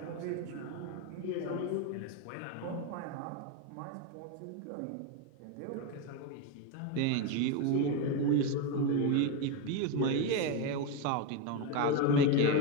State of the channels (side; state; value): both; different; correlation 0.03